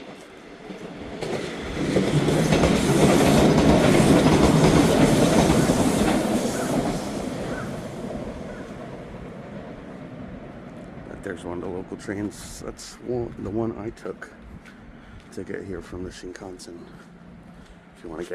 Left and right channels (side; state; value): both; identical; correlation 1.00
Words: There's one of the local trains. That's the one I took to get here from the Shinkansen. If you want to